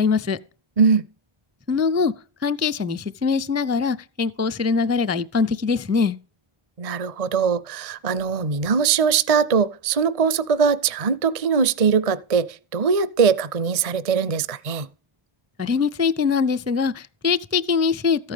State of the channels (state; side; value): late; left; 1.6 ms